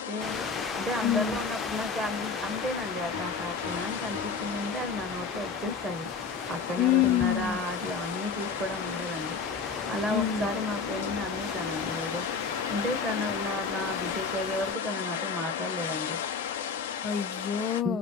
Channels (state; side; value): quieter; right; 5.1 dB